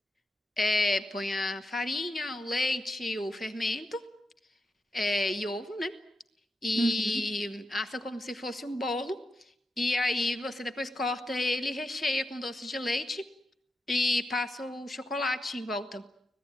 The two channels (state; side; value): normal; both; correlation 0.86